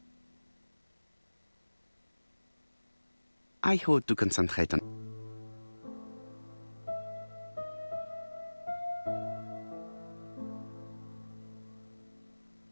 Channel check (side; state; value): both; inverted; correlation -1.00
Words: I hope to concentrate on.